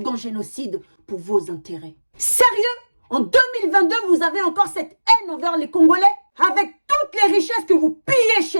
génocide pour vos intérêts. Sérieux? En 2022, vous avez encore cette haine envers les Congolais? Avec toutes les richesses que vous pillez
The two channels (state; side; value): inverted; both; correlation -1.00